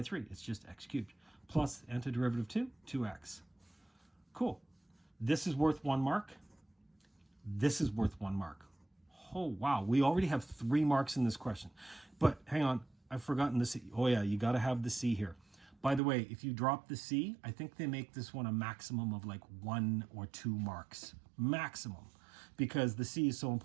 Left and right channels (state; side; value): drops out; left; at 16.0 s